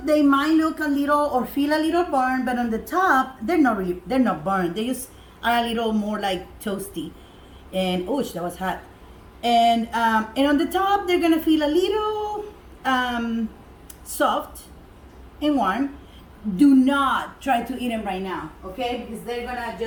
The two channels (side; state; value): both; identical; correlation 1.00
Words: they might look a little or feel a little burned, but on the top, they're not burned. They just are a little more like toasty. And oosh, that was hot. And on the top, they're gonna feel a little soft and warm. Do not try to eat them right now, okay? Because they're gonna